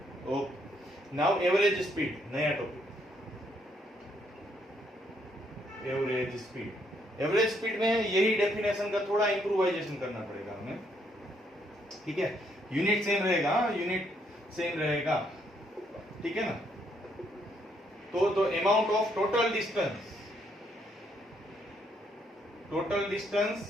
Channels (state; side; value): normal; both; correlation 0.72